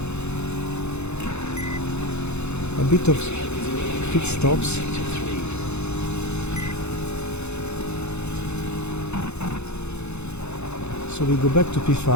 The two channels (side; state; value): right; late; 0.81 ms